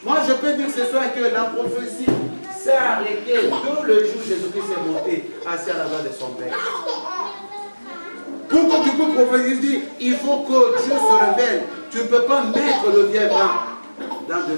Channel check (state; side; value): inverted; both; correlation -1.00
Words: Moi, je peux dire ce soir que la prophétie s'est arrêtée tout le jour où Jésus-Christ est monté assis à la main de son Père. Pour que tu puisses prophétiser, il faut que Dieu se révèle. Tu ne peux pas mettre le vieil vin dans le